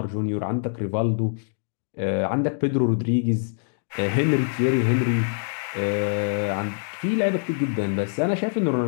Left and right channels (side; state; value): right; silent; digital silence